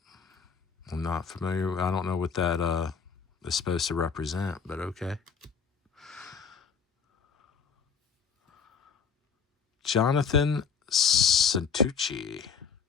not familiar. I don't know what that is supposed to represent, but okay. Jonathan Santucci.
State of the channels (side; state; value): right; quieter; 6.1 dB